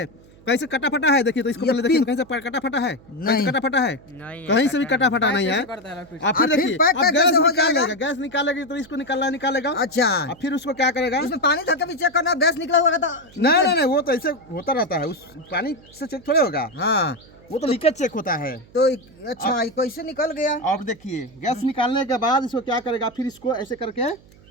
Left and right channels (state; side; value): noise; right; hum, 25 dB below the sound